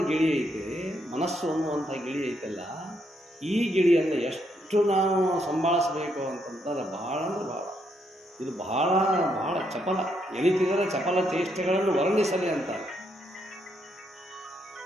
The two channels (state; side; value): normal; both; correlation 0.76